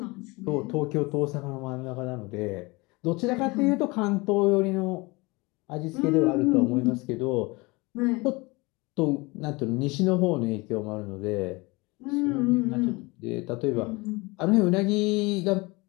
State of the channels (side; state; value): right; quieter; 24.7 dB